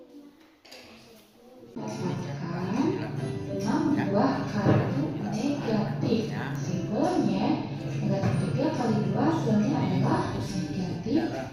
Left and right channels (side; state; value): both; identical; correlation 1.00